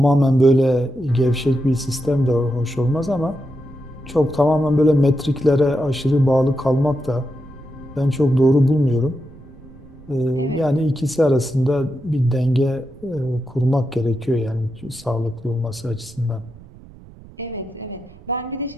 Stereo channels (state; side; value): noise; right; rumble, 21 dB below the sound